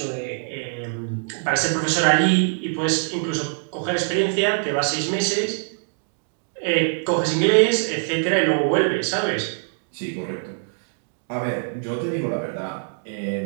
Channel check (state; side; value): silent; left; digital silence